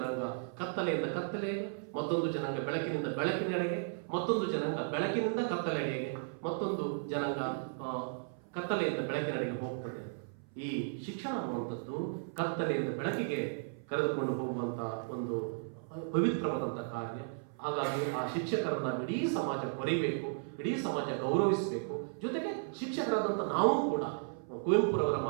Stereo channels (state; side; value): silent; left; 54 dB below the other